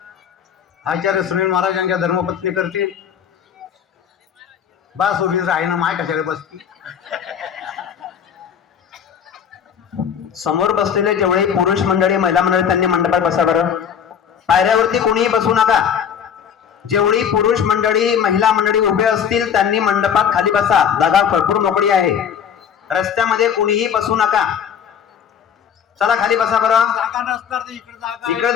आचार्य सुनील महाराज यांच्या धर्मपत्नी करतील. बस उभीच आहे ना माय कशाला बसती. समोर बसलेले जेवढे पुरुष मंडळी महिला मंडळी त्यांनी मंडपात बसा बरं. पायऱ्यावरती कोणीही बसू नका. जेवढी पुरुष मंडळी महिला मंडळी उभे असतील त्यांनी मंडपात खाली बसा. जागा भरपूर मोकळी आहे. रस्त्यामध्ये कोणीही बसू नका. चला खाली बसा बरं. इकडे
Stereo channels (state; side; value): quieter; right; 8.0 dB